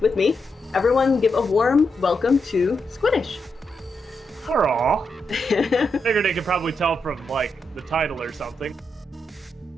with me. Everyone give a warm welcome to Squiiddish. Hurrah! Figured they could probably tell from, like, the title or something.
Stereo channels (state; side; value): normal; both; correlation 0.84